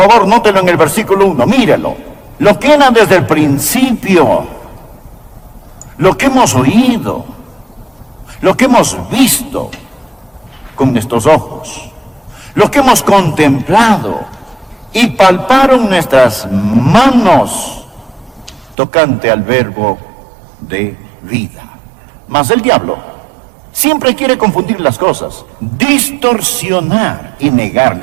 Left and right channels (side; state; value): left; drops out; at 18.8 s